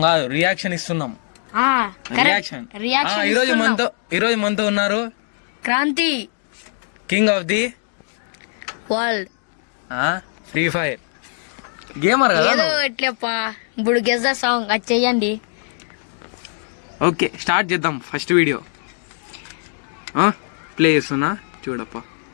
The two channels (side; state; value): right; silent; 57 dB below the other